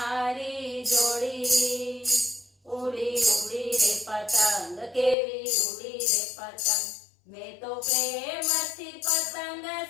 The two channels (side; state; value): right; drops out; at 5.2 s